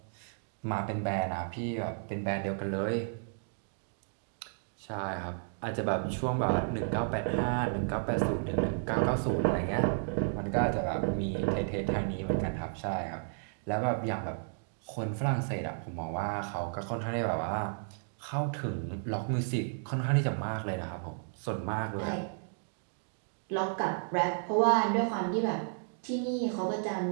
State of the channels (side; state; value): left; silent; digital silence